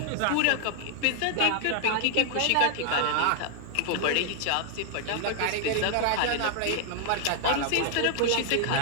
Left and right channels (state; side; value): different; both; correlation 0.00